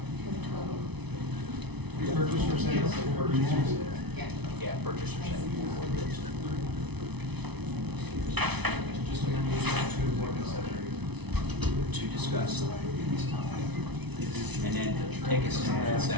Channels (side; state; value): left; late; 0.99 ms